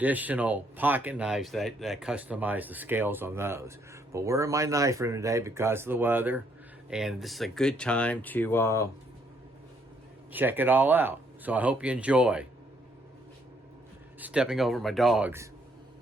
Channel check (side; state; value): both; normal; correlation 0.70